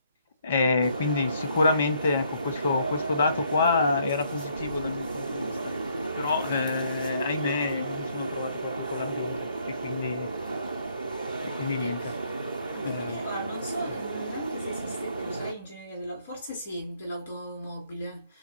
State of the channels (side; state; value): both; inverted; correlation -0.68